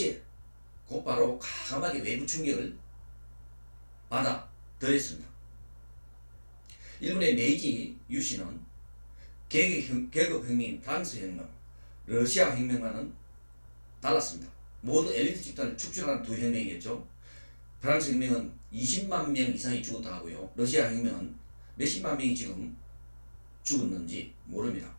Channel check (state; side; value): inverted; both; correlation -1.00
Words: 곧바로 과감하게 외부 충격을 받아들였습니다. 일본의 메이지 유신은 계급혁명, 프랑스 혁명, 러시아 혁명과는 달랐습니다. 모두 엘리트 집단을 축출하는 두 혁명이겠죠. 프랑스 혁명은 20만 명 이상이 죽었다 하고요. 러시아 혁명은 몇십만 명이 지금 죽었는지 모릅니다.